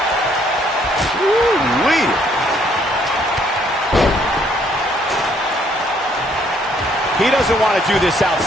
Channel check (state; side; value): normal; both; correlation 0.66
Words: Woo-wee. He doesn't want to do this